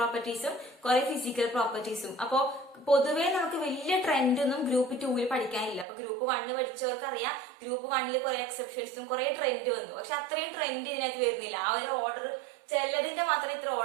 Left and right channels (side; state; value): left; drops out; at 5.9 s